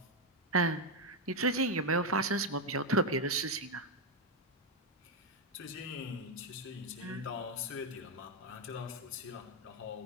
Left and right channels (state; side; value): normal; both; correlation 0.04